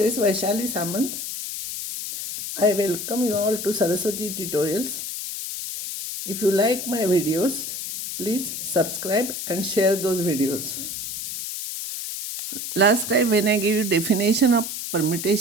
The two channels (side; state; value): left; noise; hiss, 6 dB below the sound